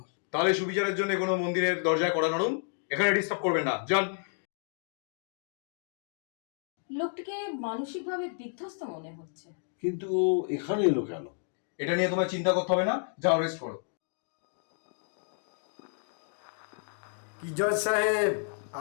তাহলে সুবিচারের জন্য কোনো মন্দিরের দরজায় কড়া নাড়ুন, এখানে ডিস্টার্ব করবেন না, যান। লোকটিকে মানসিকভাবে বিধ্বস্ত মনে হচ্ছে। কিন্তু এখানে এলো কেন? এটা নিয়ে তোমায় চিন্তা করতে হবে না, যাও রেস্ট করো। কি জজ সাহেব,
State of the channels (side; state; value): right; silent; 57 dB below the other